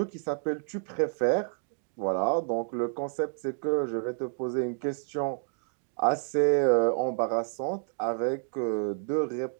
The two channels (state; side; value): silent; left; digital silence